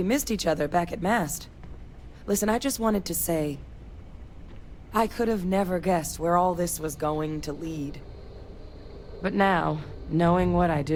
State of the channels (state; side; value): identical; both; correlation 1.00